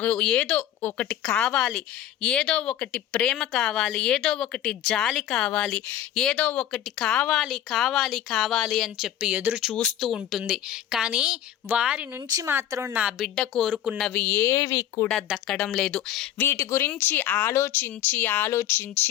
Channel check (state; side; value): quieter; right; 11.5 dB